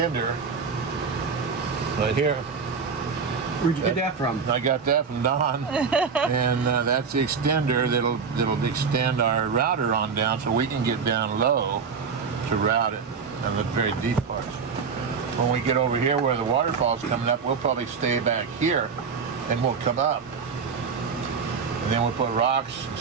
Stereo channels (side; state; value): left; quieter; 5.7 dB